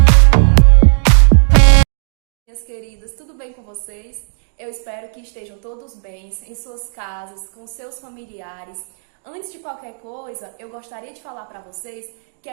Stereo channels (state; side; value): silent; left; digital silence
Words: Minhas queridas, tudo bem com vocês? Eu espero que estejam todos bem, em suas casas, com seus familiares. Antes de qualquer coisa, eu gostaria de falar para vocês que